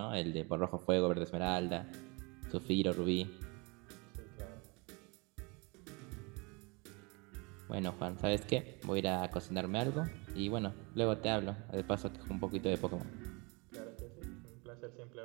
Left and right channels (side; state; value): left; quieter; 28.8 dB